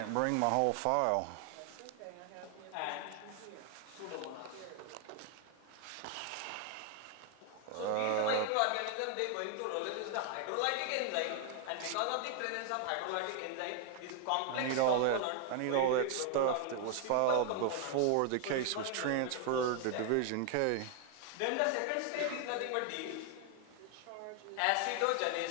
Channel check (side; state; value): both; different; correlation 0.00